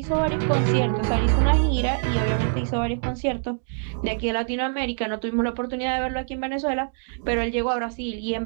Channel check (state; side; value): silent; left; digital silence